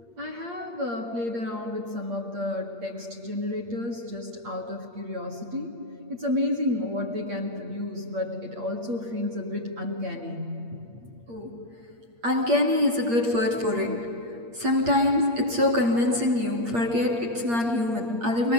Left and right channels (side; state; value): left; late; 8.6 ms